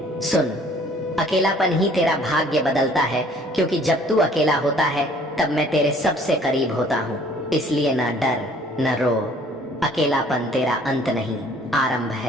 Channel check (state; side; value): normal; both; correlation 0.56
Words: सुन, अकेलापन ही तेरा भाग्य बदलता है, क्योंकि जब तू अकेला होता है तब मैं तेरे सबसे करीब होता हूँ। इसलिए ना डर न रो, अकेलापन तेरा अंत नहीं, आरंभ